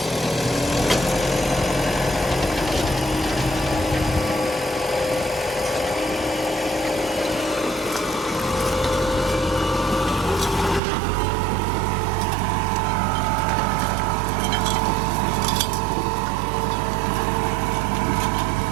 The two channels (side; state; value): left; drops out; at 10.8 s